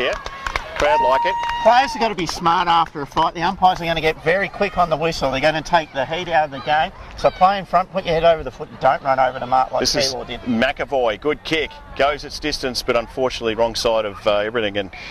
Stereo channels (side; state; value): both; identical; correlation 1.00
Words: Crowd like it. Players have got to be smart after a fight. The umpires are going to get very quick on the whistle. They're going to take the heat out of the game. So play in front, put your head over the foot, and don't run over the mark like Keilor did. McAvoy, good kick. Goes its distance, but unfortunately wrong side of everything. And